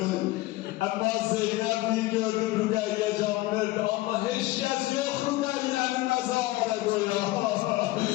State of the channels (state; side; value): quieter; right; 18.8 dB